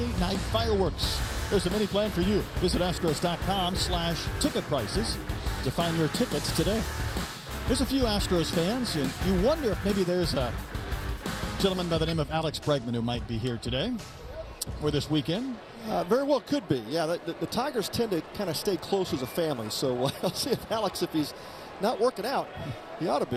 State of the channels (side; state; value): both; identical; correlation 1.00